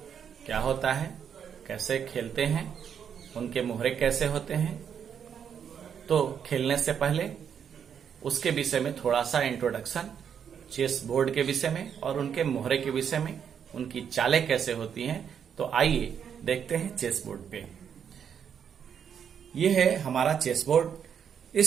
क्या होता है, कैसे खेलते हैं, उनके मोहरे कैसे होते हैं। तो खेलने से पहले उसके विषय में थोड़ा सा इंट्रोडक्शन, चेस बोर्ड के विषय में और उनके मोहरे के विषय में, उनकी चालें कैसे होती हैं। तो आइए देखते हैं चेस बोर्ड पे। ये है हमारा चेस बोर्ड।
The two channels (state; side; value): quieter; left; 7.9 dB